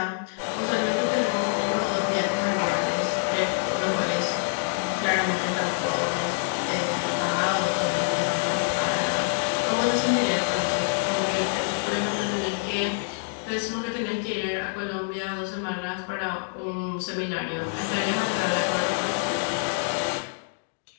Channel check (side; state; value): right; silent; digital silence